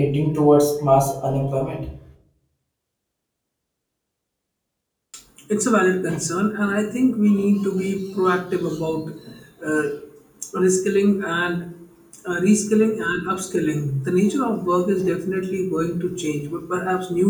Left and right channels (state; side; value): identical; both; correlation 1.00